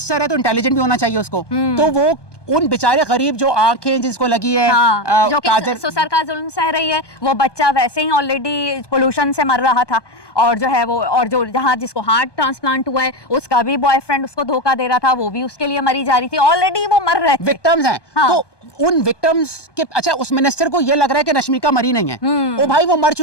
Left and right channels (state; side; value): late; right; 1.2 ms